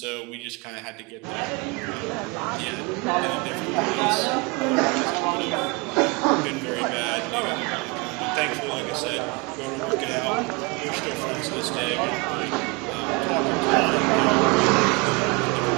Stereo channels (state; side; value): quieter; left; 28.3 dB